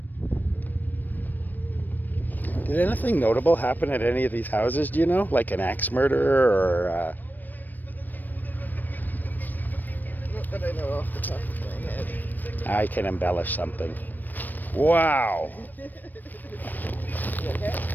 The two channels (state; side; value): late; right; 0.089 ms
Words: Did anything notable happen at any of these houses, do you know? Like an axe murder or... Not that I know off the top of my head. I can embellish something. Wow! You okay?